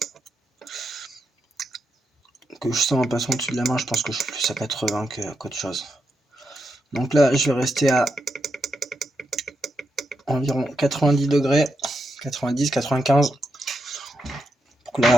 je sens en passant au-dessus de la main, je pense que je suis plus à 80 qu'autre chose. Donc là, je vais rester à environ 90 degrés, 90, 95, pour que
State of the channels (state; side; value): normal; both; correlation 0.84